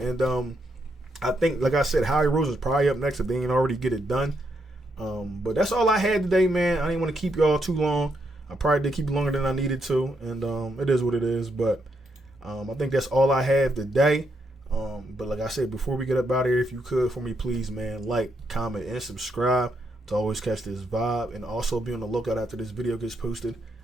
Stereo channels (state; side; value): normal; both; correlation 0.78